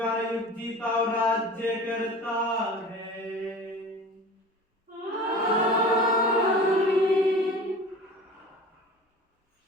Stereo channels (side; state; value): both; normal; correlation 0.38